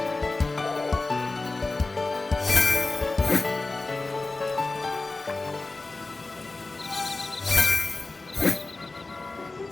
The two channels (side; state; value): right; quieter; 3.3 dB